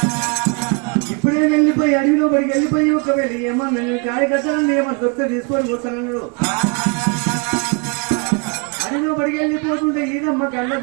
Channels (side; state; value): left; quieter; 34.2 dB